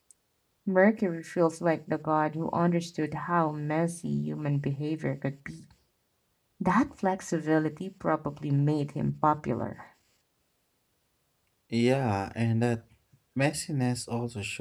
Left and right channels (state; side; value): identical; both; correlation 1.00